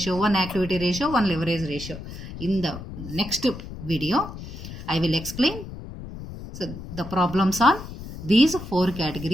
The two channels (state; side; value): noise; left; rumble, 11 dB below the sound